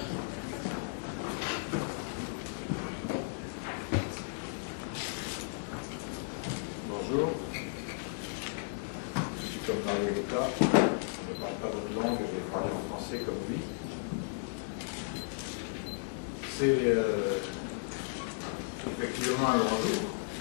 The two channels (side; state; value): right; silent; digital silence